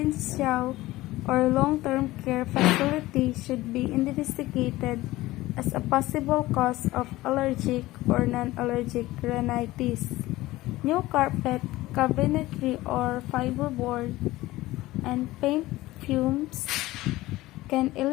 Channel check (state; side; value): quieter; right; 17.9 dB